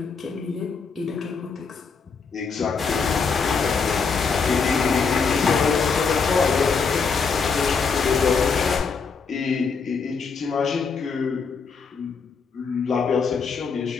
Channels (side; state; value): right; quieter; 5.3 dB